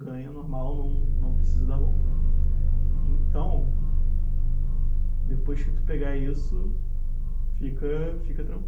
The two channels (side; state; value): both; identical; correlation 1.00